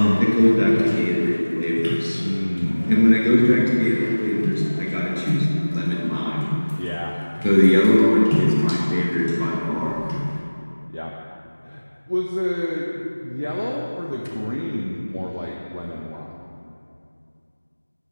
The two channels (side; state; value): both; inverted; correlation -1.00